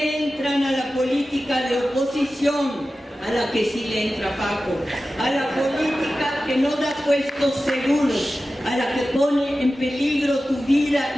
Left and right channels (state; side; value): normal; both; correlation 0.94